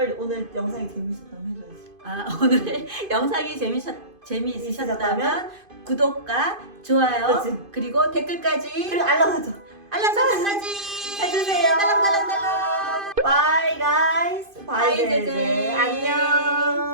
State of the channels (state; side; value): late; left; 2.5 ms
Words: 오늘 영상이 재밌었다면 해줘야지. 아, 오늘 영상이 재미있으셨다면 구독과 좋아요 그렇지. 그리고 댓글까지 그리고 알람 설정 알람 설정까지 해주세요. 딸랑딸랑딸랑. Bye guys. Bye, Bye 제제. 제제.